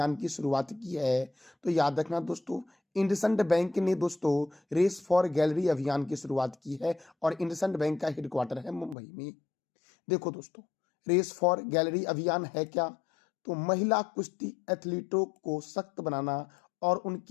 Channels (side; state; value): right; drops out; at 9.0 s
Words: की शुरुआत की है? तो याद रखना दोस्तों, इंडसइंड बैंक ने दोस्तों रेस फॉर गैलरी अभियान की शुरुआत की है और इंडसइंड बैंक का हेडक्वार्टर है मुंबई में। देखो दोस्तों, रेस फॉर गैलरी अभियान है क्या? तो महिला कुश्ती एथलीटों को सशक्त बनाना और